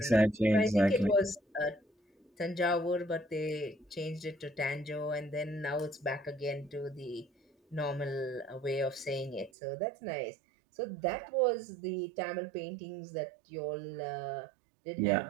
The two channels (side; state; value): left; drops out; at 9.5 s